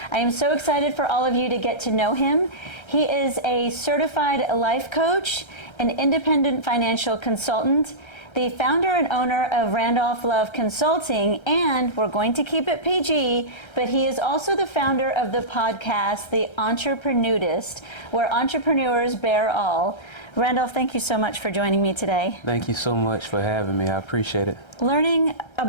I am so excited for all of you to get to know him. He is a certified life coach, an independent financial consultant, the founder and owner of Randolph Love Consulting, and we're going to keep it PG, but he is also the founder of the podcast, The Entreprenudist, where entrepreneurs bear all. Randolph, thank you so much for joining me today. Thank you so much for having me. I appreciate it. Learning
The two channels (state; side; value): late; right; 1.3 ms